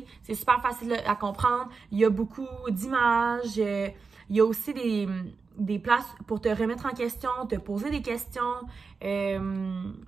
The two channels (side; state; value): left; quieter; 4.8 dB